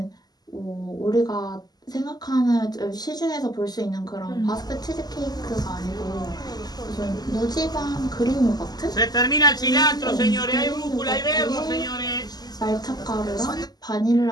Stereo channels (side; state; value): right; late; 0.20 ms